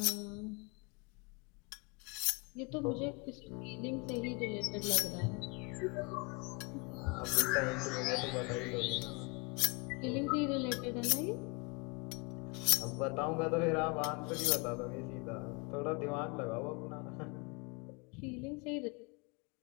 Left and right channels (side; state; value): right; quieter; 30.9 dB